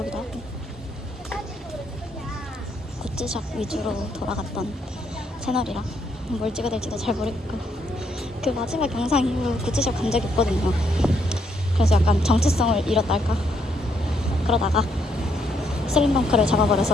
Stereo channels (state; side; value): normal; both; correlation 0.74